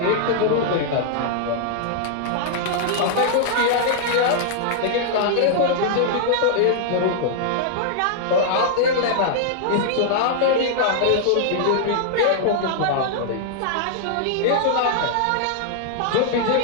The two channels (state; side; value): different; both; correlation -0.01